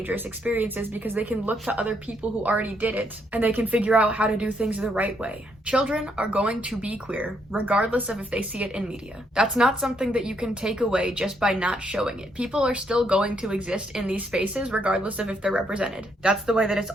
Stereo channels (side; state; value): both; normal; correlation 0.74